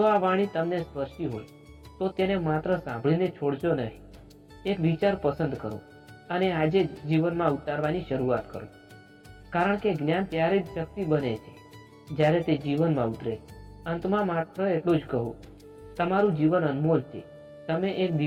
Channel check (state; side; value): identical; both; correlation 1.00